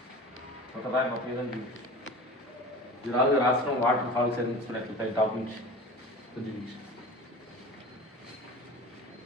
ఒకదారి మొత్తం ఏదైనా ఇది రాష్ట్రం వాటర్ ఫాల్స్ ఎట్లా టాప్ నుంచి కొద్ది నుంచి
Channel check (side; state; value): both; normal; correlation 0.36